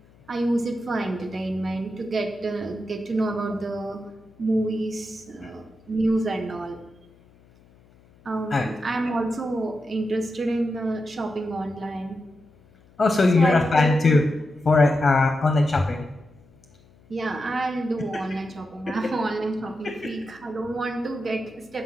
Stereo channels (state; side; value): noise; left; hum, 28 dB below the sound